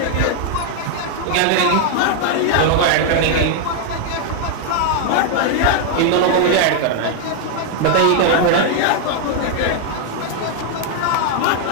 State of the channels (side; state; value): both; different; correlation 0.00